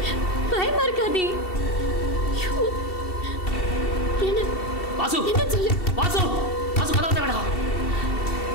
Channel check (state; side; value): late; right; 2.7 ms